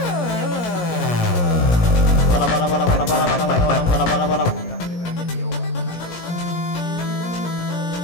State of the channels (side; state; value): right; late; 17 ms